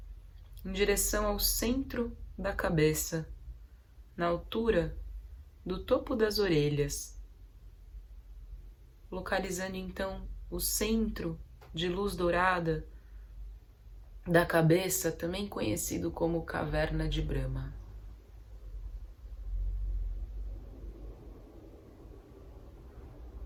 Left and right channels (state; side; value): identical; both; correlation 1.00